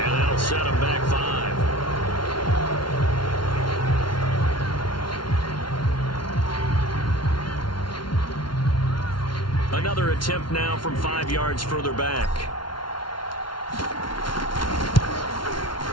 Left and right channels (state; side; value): late; right; 0.72 ms